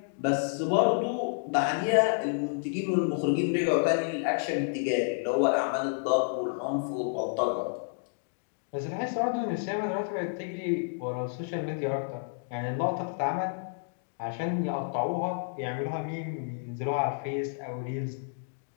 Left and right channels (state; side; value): silent; right; digital silence